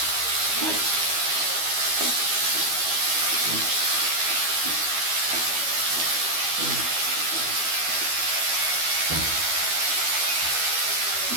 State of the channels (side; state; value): left; late; 12 ms